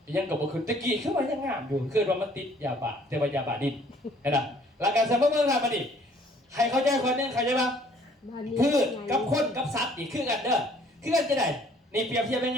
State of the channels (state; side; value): normal; both; correlation 0.58